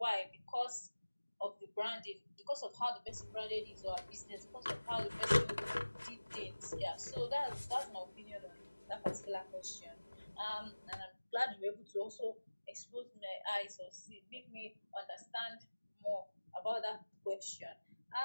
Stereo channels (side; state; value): both; inverted; correlation -1.00